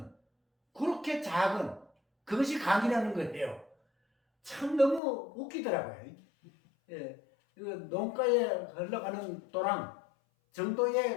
그렇게 작은 그것이 강이라는 거예요. 참 너무 웃기더라고요. 예, 그 농가에 흘러가는 도랑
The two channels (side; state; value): right; drops out; at 5.0 s